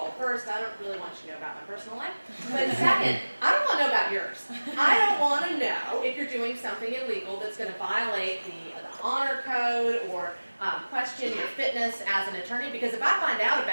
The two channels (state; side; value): inverted; both; correlation -1.00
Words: First, I don't really want you to know about my personal life. But second, I don't want to know about yours. I don't want to know if you're doing something illegal that's going to violate the honor code or question your fitness as an attorney, because if I find out